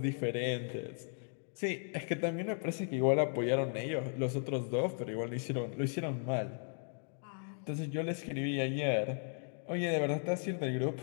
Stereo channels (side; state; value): right; silent; 54 dB below the other